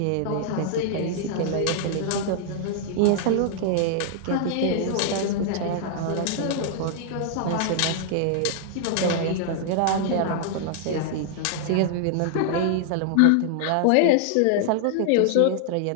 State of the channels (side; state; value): both; different; correlation -0.01